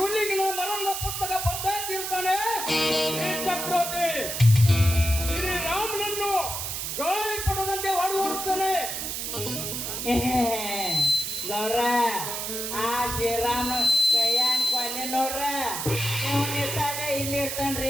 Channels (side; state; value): right; noise; hiss, 4 dB below the sound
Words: ಮರಣದ ಪುಸ್ತಕ ಬರ್ತಾ ಇರ್ತಾನೆ ಈ ಚಕ್ರವರ್ತಿ. ಶ್ರೀರಾಮನನ್ನು ಗಾಳಿ ಪಡದಂತೆ ಹೊಡೆದುತ್ತಾನೆ. ಗೌಡ್ರ ಆ ಶ್ರೀರಾಮ ಕೈಯಾನ್ ಕೊಲ್ಲಿ ನೋಡ್ರ ಇವನ್ ಇರ್ತಾನೆ ಇಲ್ಲಿ